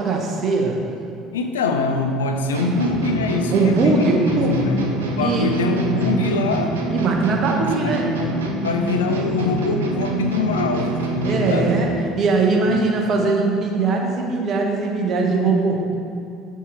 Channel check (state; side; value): normal; both; correlation 0.35